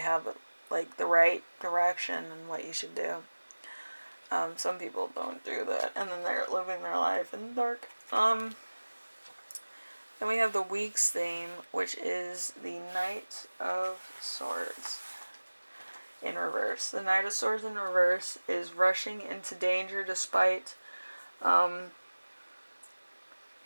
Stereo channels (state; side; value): inverted; both; correlation -1.00